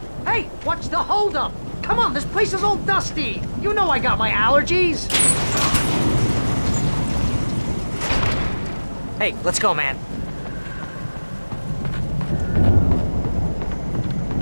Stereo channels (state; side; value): inverted; both; correlation -1.00